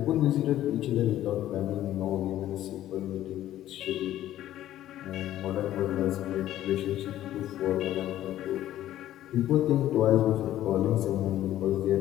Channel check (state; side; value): quieter; right; 13.1 dB